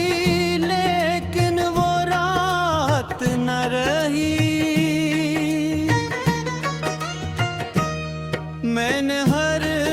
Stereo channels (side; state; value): both; identical; correlation 1.00